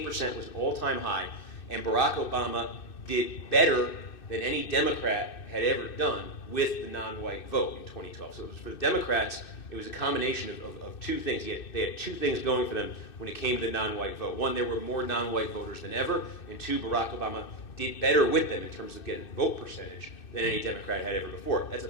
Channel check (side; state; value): right; late; 2.6 ms